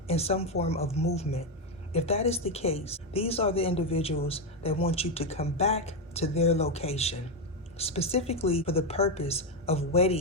in some form of movement. If that is the case, these are the individuals that want you to come back to their location, specifically for the purpose of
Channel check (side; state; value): both; normal; correlation 0.07